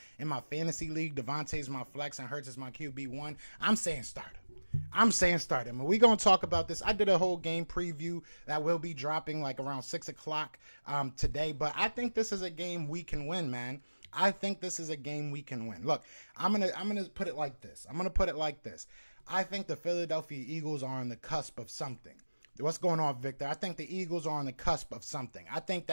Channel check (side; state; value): both; inverted; correlation -1.00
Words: in my fantasy league? Devontae's my flex and Hurts is my QB1. I'm saying start him. And we're going to talk about this. I did a whole game preview that will be dropping like around 6 o'clock today, but I think this is a game we can win, man. I think this is a game we can win. Look, I'm gonna put it like this. I think the Philadelphia Eagles are on the cusp of something. What's going on, Victor? I think the Eagles are on the cusp of something. I think